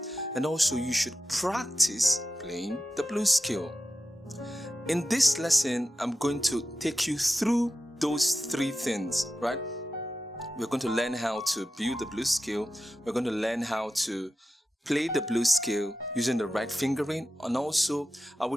and also you should practice playing the blues scale. In this lesson, I'm going to take you through those 3 things, right? We're going to learn how to build the blues scale. We're going to learn how to play the blues scale using the right fingering, and also I will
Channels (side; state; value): both; normal; correlation 0.92